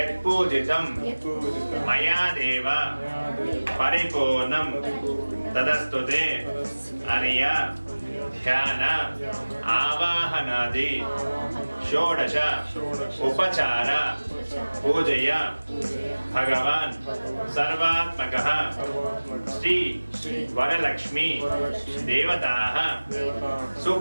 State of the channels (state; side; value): inverted; both; correlation -1.00